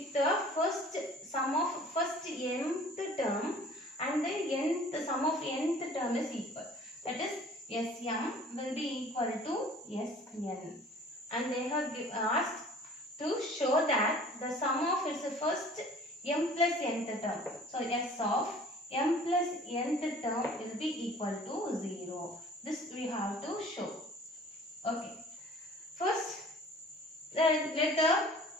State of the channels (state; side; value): normal; both; correlation 0.49